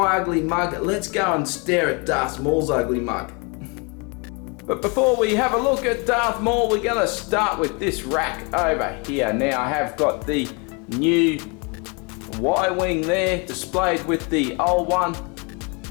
ugly mug. Let's go and stare at Darth Maul's ugly mug. But before we have a look at Darth Maul, we're going to start with this rack over here. Now I have got the new Y-wing there displayed with the old one.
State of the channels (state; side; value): quieter; right; 31.9 dB